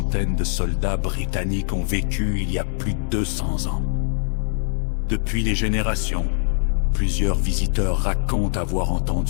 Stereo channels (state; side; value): silent; right; digital silence